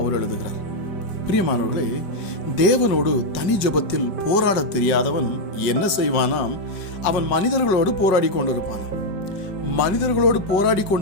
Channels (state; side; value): late; right; 5.4 ms